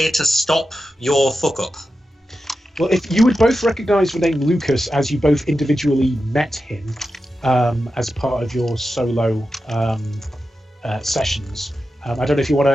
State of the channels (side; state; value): both; normal; correlation 0.91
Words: to stop your fuck up. Well, if you would both recognise the name Lucas as you both individually met him as part of your solo sessions. I don't know if you want